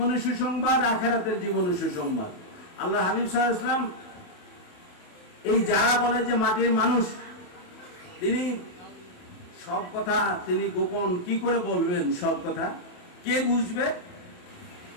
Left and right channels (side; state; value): right; late; 27 ms